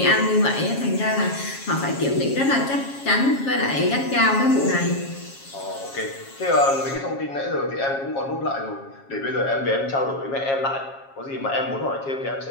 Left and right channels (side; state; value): right; late; 7.3 ms